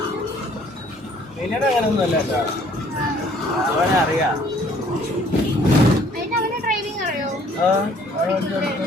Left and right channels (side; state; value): both; normal; correlation 0.59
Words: പിന്നീട് അങ്ങനെയൊന്നും അല്ല കേട്ടോ, അവനെ അറിയാം.